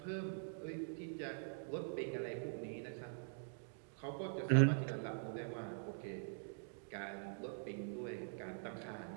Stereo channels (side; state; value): left; silent; digital silence